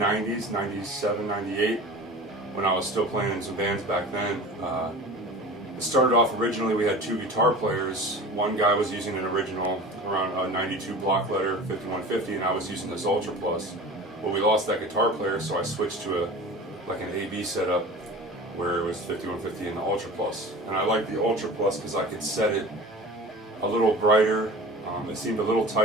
97, 98, when I was still playing in some bands back then. It started off originally, we had two guitar players. One guy was using an original around a 92 block letter 5150, and I was using this Ultra Plus. Well, we lost that guitar player, so I switched to like an AB setup where it was 5150 and the Ultra Plus. And I liked the Ultra Plus because I could set it a little brighter. It seemed a little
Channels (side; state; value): both; normal; correlation 0.38